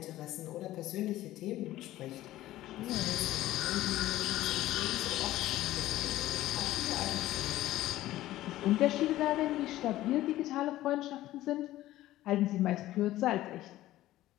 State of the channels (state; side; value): quieter; right; 15.2 dB